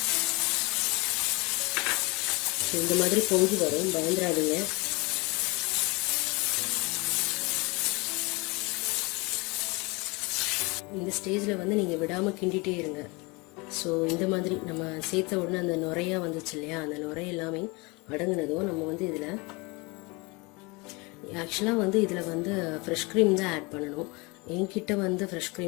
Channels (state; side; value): quieter; right; 26.6 dB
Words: ஸோ இந்த மாதிரி பொங்கி வரும், பயந்துடாதீங்க. இந்த ஸ்டேஜில் வந்து நீங்கள் விடாமல் கிண்டிகிட்டே இருங்க. ஸோ இந்த மாதிரி நம்ம சேர்த்த உடனே அந்த நுரையாக வந்துச்சு இல்லையா, அந்த நுரை எல்லாமே அடங்குனதும் நம்ம வந்து இதில் ஆக்சுவலாக வந்து இதில் வந்து ஃப்ரெஷ் க்ரீம் தான் ஆட் பண்ணணும். என்கிட்ட வந்து ஃப்ரெஷ்